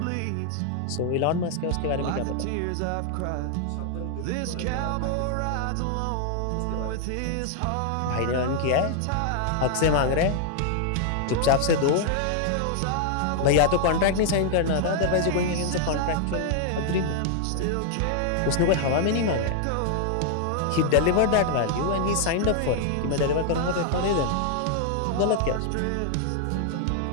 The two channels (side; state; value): both; different; correlation 0.00